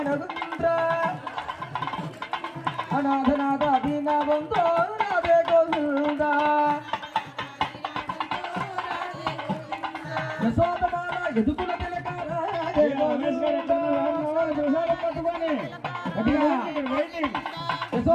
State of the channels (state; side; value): identical; both; correlation 1.00